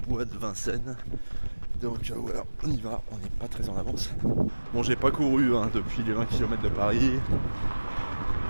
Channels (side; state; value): both; inverted; correlation -1.00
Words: bois de Vincennes. Donc voilà, on y va, on n'est pas très en avance. Bon, j'ai pas couru depuis les 20 km de Paris.